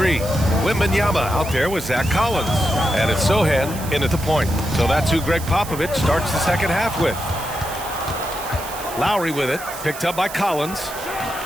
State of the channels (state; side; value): noise; right; hiss, 12 dB below the sound